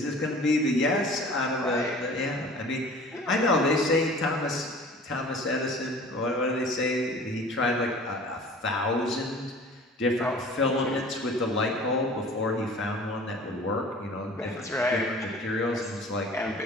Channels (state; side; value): normal; both; correlation 0.45